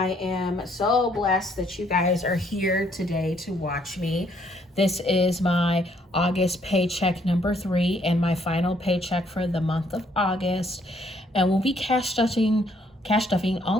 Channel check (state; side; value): normal; both; correlation 0.67